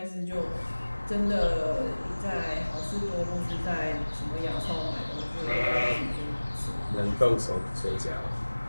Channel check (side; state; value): both; inverted; correlation -1.00